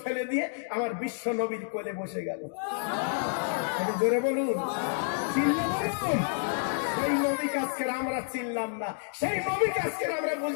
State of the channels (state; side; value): silent; right; digital silence